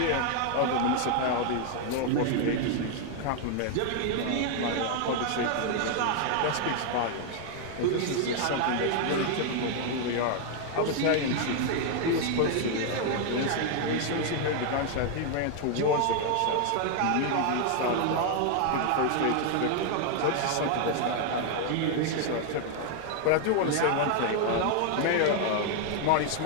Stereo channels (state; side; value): different; both; correlation 0.00